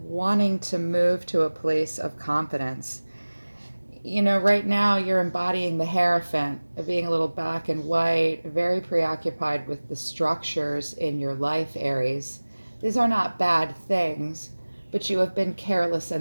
to move to a place of confidence. You know, right now you're embodying the Hierophant, being a little black and white, very preoccupied with the structures in your life, Aries. These are not bad things, but you have been careless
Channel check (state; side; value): inverted; both; correlation -1.00